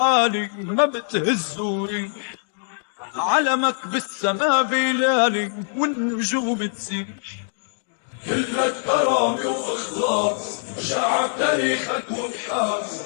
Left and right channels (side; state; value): right; silent; digital silence